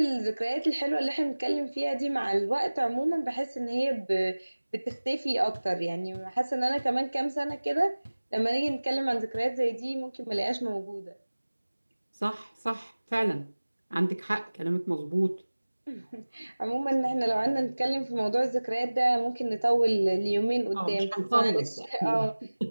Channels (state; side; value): inverted; both; correlation -1.00